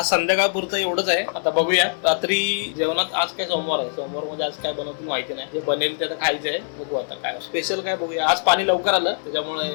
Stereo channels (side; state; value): right; silent; digital silence